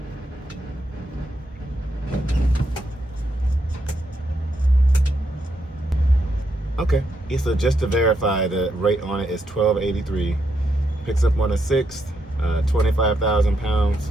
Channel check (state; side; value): normal; both; correlation 0.80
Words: Okay. Yeah, so just to verify, the rate on it is $12.83. Picks up on the 6th, 25,000 pounds,